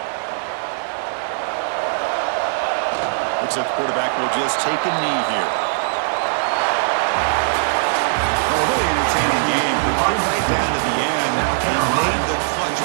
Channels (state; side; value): silent; left; digital silence